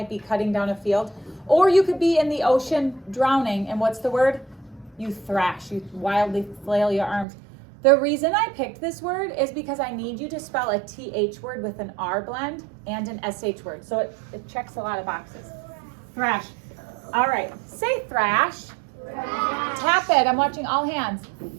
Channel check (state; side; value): drops out; left; at 7.2 s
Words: be cutting down a field. Or you could be in the ocean drowning. And what's the word? You thrash. You wildly flail your arms. The reason I picked this word is because I need you to spell a TH word with an R blend and an SH word. So it checks a lot of boxes. Thrash. All right. Say thrash. Thrash. Tap it. I'm watching all hands.